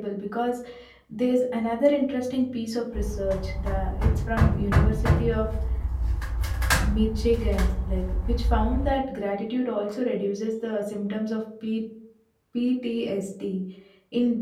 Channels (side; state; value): both; identical; correlation 1.00